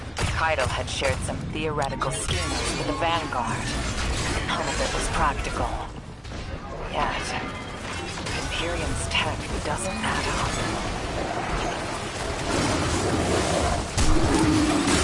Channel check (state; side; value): identical; both; correlation 1.00